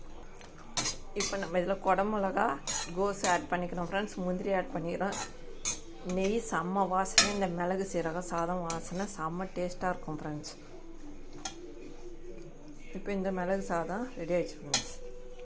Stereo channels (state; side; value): identical; both; correlation 1.00